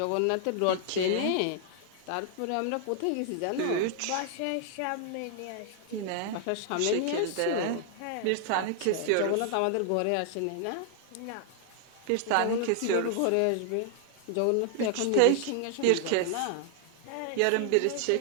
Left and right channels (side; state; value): both; different; correlation 0.00